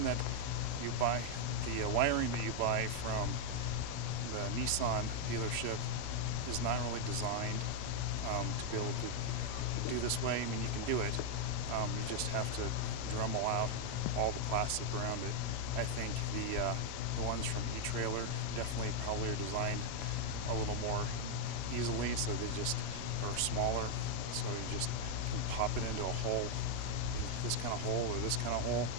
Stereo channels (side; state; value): both; different; correlation 0.00